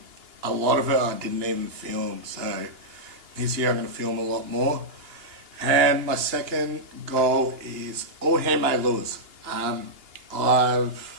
A lot of it I didn't even film, so this year I'm going to film a lot more. And my second goal is all handmade lures.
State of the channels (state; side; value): late; left; 2.8 ms